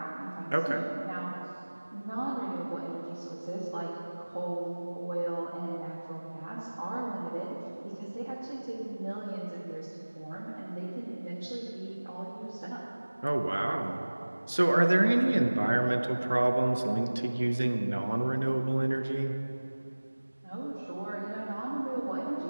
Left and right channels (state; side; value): inverted; both; correlation -1.00